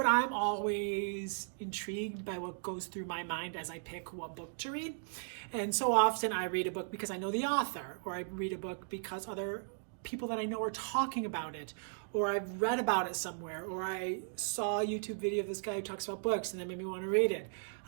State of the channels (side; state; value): left; silent; digital silence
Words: I'm always intrigued by what goes through my mind as I pick what book to read. And so often I read a book because I know the author, or I read a book because other people that I know are talking about it, or I've read about it somewhere, or I saw a YouTube video of this guy who talks about books and that made me want to read it.